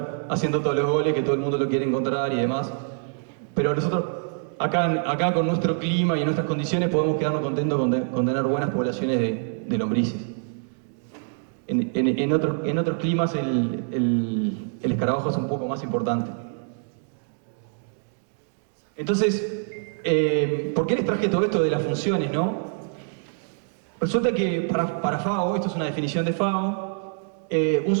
haciendo todos los goles, que todo el mundo lo quiere encontrar y demás. Pero nosotros acá con nuestro clima y en nuestras condiciones podemos quedarnos contentos con tener buenas poblaciones de lombrices. En otros climas el escarabajo es un poco más importante. Entonces, ¿por qué les traje todo esto de las funciones, no? Resulta que para FAO, esto es una definición de FAO, un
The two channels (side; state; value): left; silent; 56 dB below the other